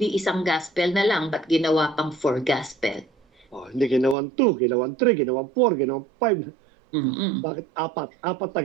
isang gospel na lang? Ba't ginawa pang 4 gospel? Hindi ginawan 2, ginawan 3, ginawan 4, ginawan 5. Mm-mm. Bakit 4? 4 na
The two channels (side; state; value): left; drops out; at 4.2 s